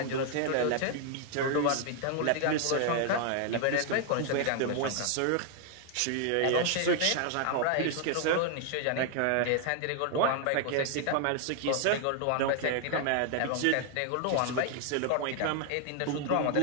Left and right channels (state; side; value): different; both; correlation 0.00